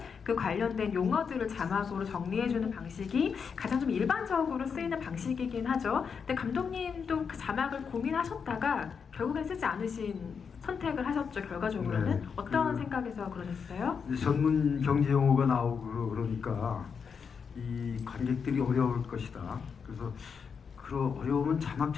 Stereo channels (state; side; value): quieter; right; 6.2 dB